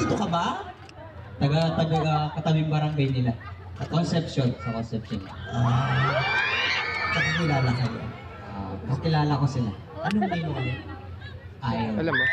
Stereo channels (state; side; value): identical; both; correlation 1.00